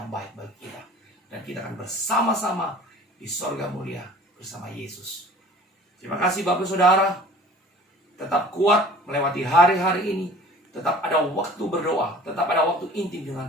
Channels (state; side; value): normal; both; correlation 0.46